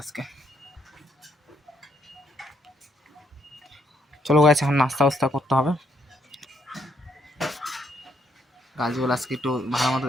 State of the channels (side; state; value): both; normal; correlation 0.72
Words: আজকে। চলো গাইস, এখন নাস্তা বাস্তা করতে হবে। গাছগুলো আজকে একটু ভালো মতো